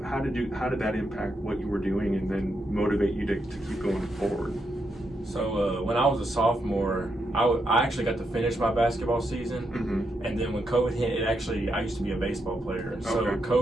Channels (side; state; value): both; normal; correlation 0.82